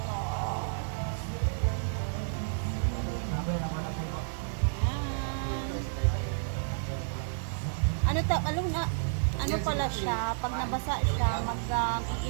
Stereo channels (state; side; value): silent; left; digital silence